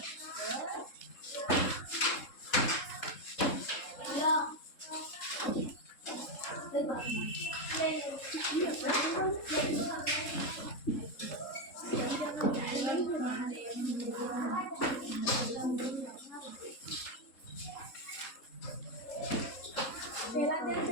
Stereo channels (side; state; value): right; late; 3.7 ms